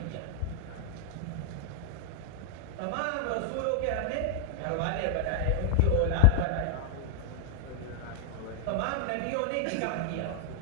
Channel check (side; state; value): both; different; correlation 0.00